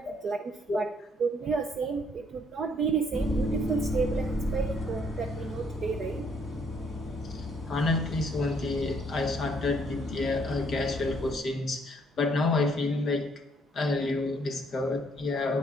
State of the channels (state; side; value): normal; both; correlation 0.67